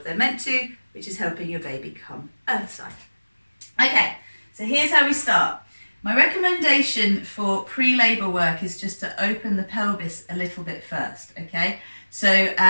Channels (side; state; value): both; inverted; correlation -1.00